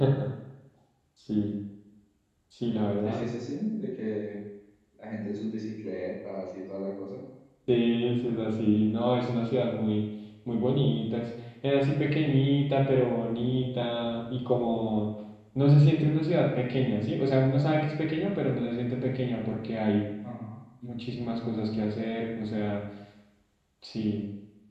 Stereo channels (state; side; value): identical; both; correlation 1.00